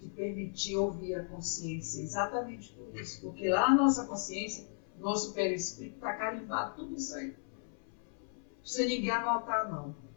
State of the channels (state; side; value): silent; right; 54 dB below the other